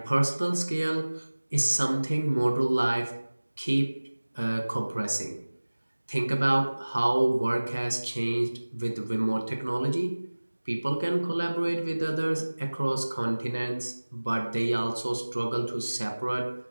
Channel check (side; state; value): both; inverted; correlation -1.00